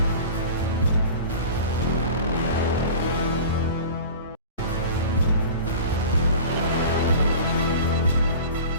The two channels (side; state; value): both; inverted; correlation -0.38